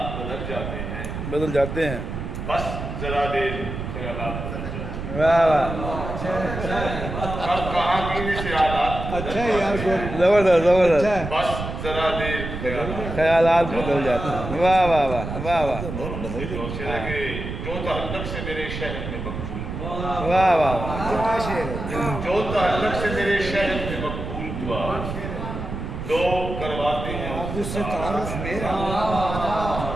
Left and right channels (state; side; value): noise; right; rumble, 6 dB below the sound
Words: بدل جاتے ہیں. بس ذرا دیر خیالات بدل جاتے ہیں. واہ واہ. کب کہاں پینے سے حالات اچھا ہے یار. زبردست زبردست. بس ذرا دیر خیالات بدل جاتے ہیں. واہ واہ واہ واہ واہ. جو تعلق سے میرے شہر میں مقبول ہوا. واہ واہ. جو تعلق سے میرے شہر میں مقبول ہوا لوگ کرواتے ہیں اس سے تعارف میرا.